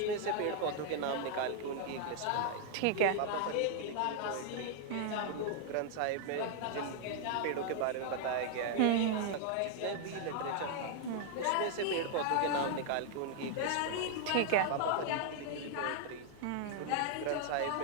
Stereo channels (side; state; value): both; different; correlation 0.00